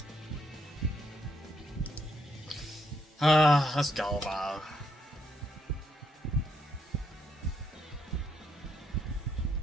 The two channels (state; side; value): normal; both; correlation 0.75